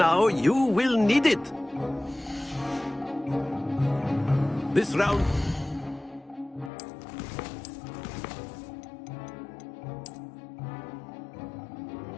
You will need it. This round...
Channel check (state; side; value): drops out; right; at 6.7 s